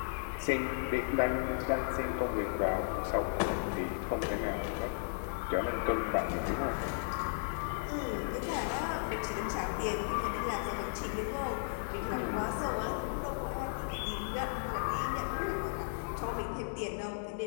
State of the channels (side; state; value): right; silent; digital silence